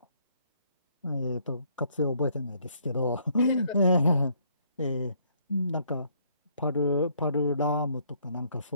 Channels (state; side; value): inverted; both; correlation -0.67